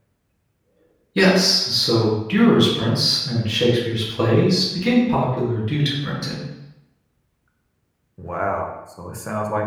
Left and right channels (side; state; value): both; identical; correlation 1.00